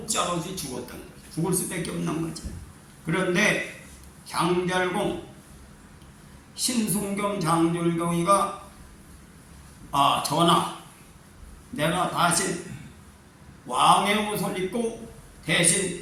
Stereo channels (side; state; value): both; identical; correlation 1.00